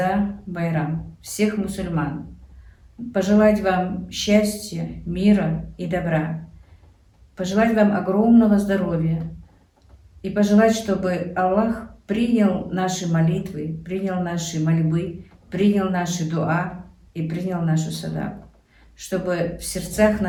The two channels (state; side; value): identical; both; correlation 1.00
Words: Байрам, всех мусульман. Пожелать вам счастья, мира и добра. Пожелать вам огромного здоровья. И пожелать, чтобы Аллах принял наши молитвы, принял наши мольбы, принял наши дуа и принял нашу садаку. Чтобы в сердцах